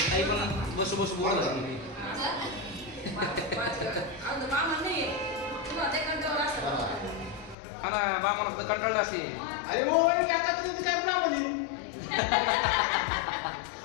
बसू बसू बोल मामा कंटाळले असते अरे हो काका तुम्ही काय म्हणे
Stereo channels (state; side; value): drops out; right; at 7.6 s